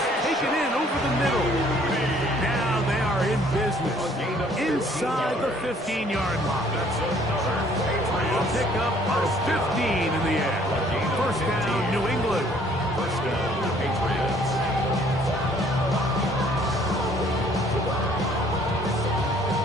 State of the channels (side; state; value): both; normal; correlation 0.60